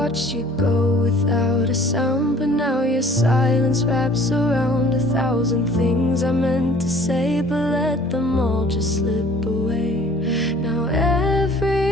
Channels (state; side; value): normal; both; correlation 0.52